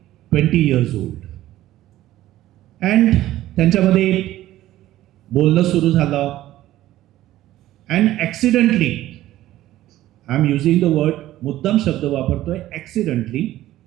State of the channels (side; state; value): left; quieter; 14.6 dB